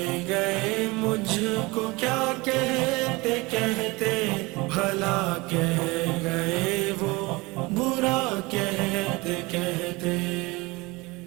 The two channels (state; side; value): quieter; left; 23.9 dB